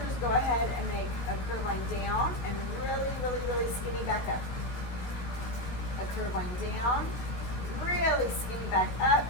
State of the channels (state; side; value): late; right; 16 ms